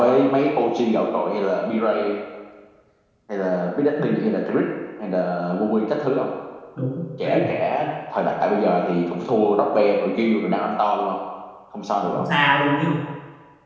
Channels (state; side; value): identical; both; correlation 1.00